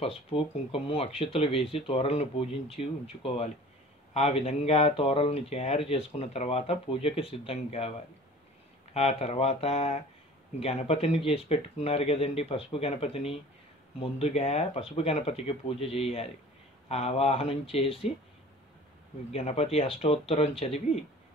కుంకుమ, అక్షతలు వేసి తోరణను పూజించి ఉంచుకోవాలి. ఆ విధంగా తోరణను తయారు చేసుకున్న తర్వాత పూజకి సిద్ధం కావాలి. ఆ తర్వాత గణపతిని చేసి పెట్టుకున్నారు కదండి, పసుపు గణపతిని. ముందుగా పసుపు గణపతికి పూజ చేయాలి. ఆవాహనం చేసి గణపతి అష్టోత్తరం చదివి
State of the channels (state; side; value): normal; both; correlation 0.45